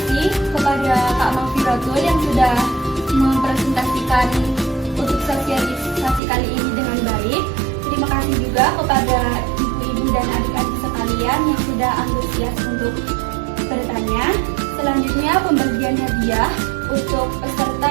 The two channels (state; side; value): drops out; left; at 6.2 s